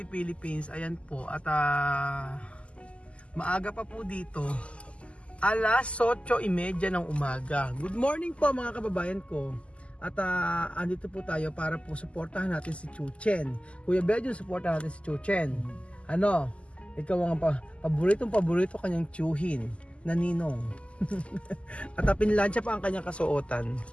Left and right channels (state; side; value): late; right; 0.057 ms